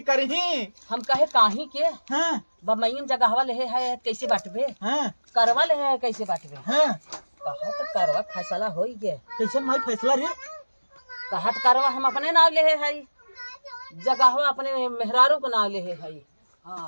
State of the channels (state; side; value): inverted; both; correlation -1.00